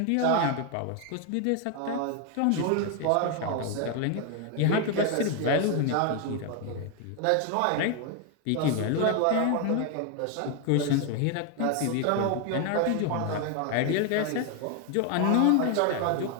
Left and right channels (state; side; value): different; both; correlation 0.01